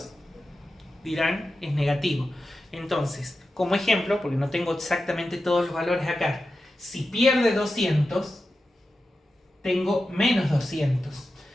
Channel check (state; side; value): normal; both; correlation 0.92